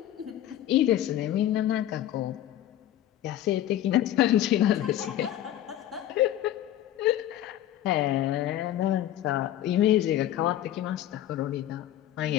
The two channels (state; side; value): quieter; right; 12.6 dB